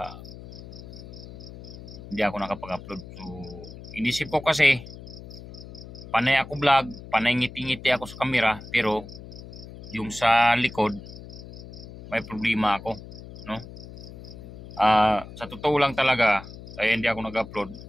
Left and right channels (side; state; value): left; noise; hum, 15 dB below the sound